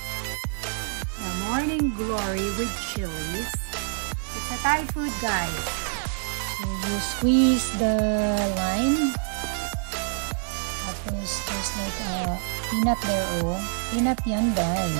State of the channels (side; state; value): left; silent; digital silence